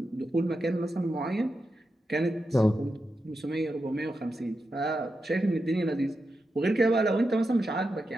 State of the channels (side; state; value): both; normal; correlation 0.88